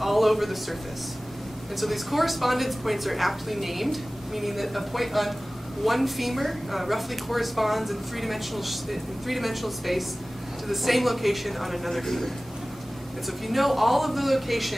over the surface. And so these correspondence points are aptly named, meaning that a point on one femur roughly corresponds in three-dimensional space to the same location on another femur. And so if you know all of the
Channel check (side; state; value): both; normal; correlation 0.98